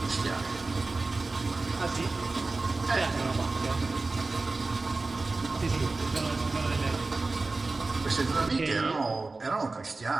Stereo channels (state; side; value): quieter; left; 3.5 dB